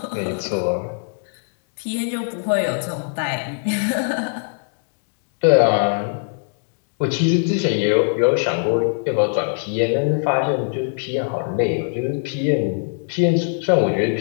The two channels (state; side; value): silent; right; digital silence